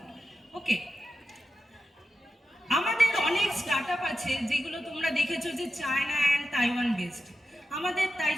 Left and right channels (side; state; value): both; normal; correlation 0.91